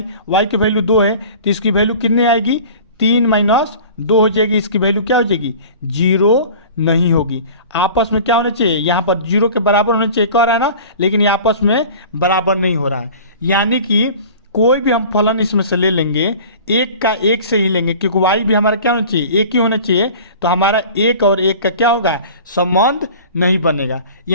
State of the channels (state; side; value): inverted; both; correlation -0.42